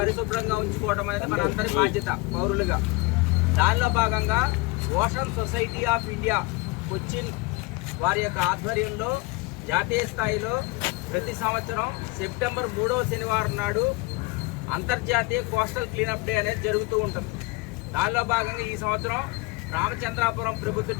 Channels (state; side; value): quieter; right; 24.5 dB